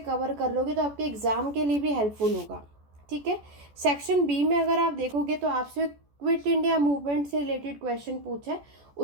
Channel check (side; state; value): left; late; 14 ms